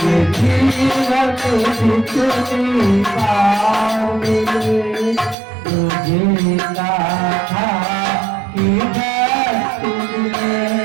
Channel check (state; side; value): drops out; left; at 5.4 s